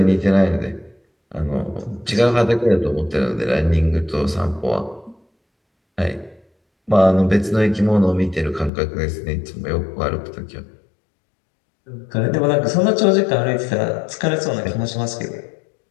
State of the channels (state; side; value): drops out; right; at 8.7 s